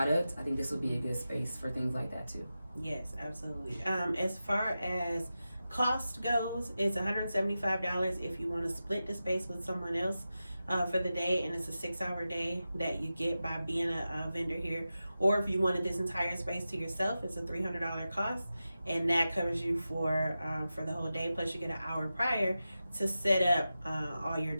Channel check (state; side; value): inverted; both; correlation -0.92